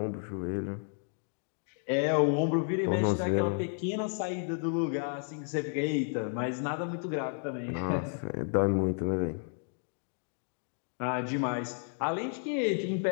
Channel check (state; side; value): silent; right; 56 dB below the other